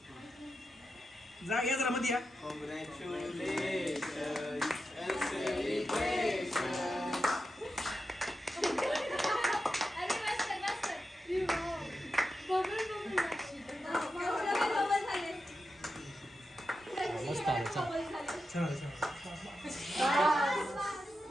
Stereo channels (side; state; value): both; normal; correlation 0.89